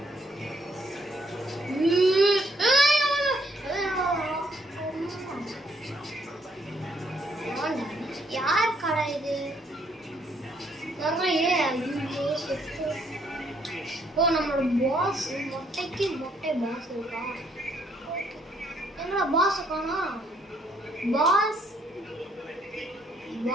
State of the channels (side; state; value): both; normal; correlation 0.69